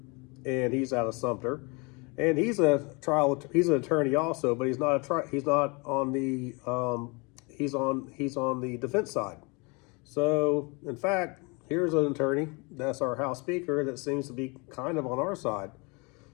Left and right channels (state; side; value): quieter; right; 29.5 dB